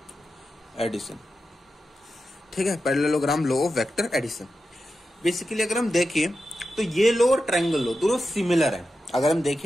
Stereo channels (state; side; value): normal; both; correlation 0.90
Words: addition. ठीक है, parallelogram law of vector addition. Basically अगर हम देखें तो ये लॉ और ट्रायंगल लॉ दोनों सिमिलर है। अगर हम